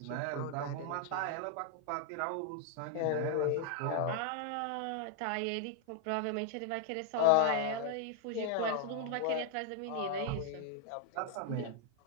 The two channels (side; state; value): both; different; correlation 0.00